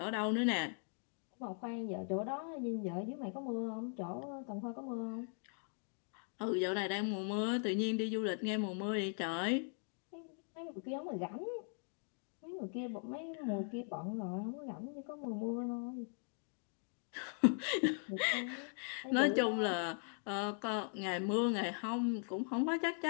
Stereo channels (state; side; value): silent; right; 51 dB below the other